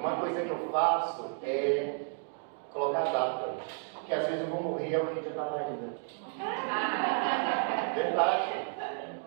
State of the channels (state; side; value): silent; left; 56 dB below the other